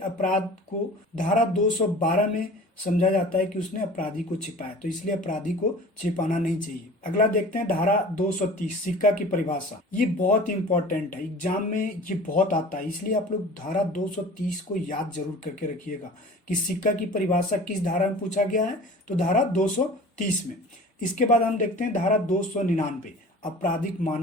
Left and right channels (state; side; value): normal; both; correlation 0.42